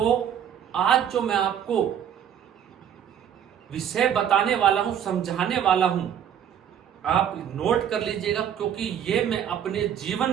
आज जो मैं आपको विषय बताने वाला हूं, समझाने वाला हूं, आप नोट कर लीजिएगा, क्योंकि ये मैं अपने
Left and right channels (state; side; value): quieter; left; 9.1 dB